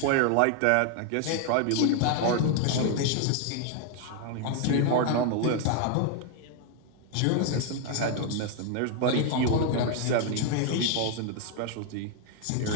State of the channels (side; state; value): both; different; correlation 0.00